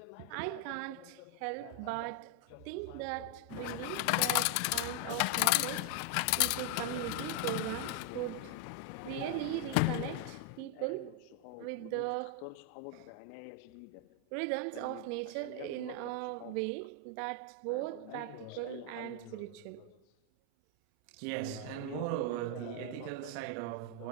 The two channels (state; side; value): different; both; correlation 0.00